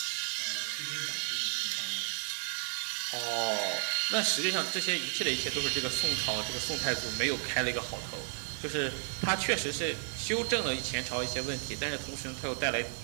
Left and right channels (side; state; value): left; silent; 56 dB below the other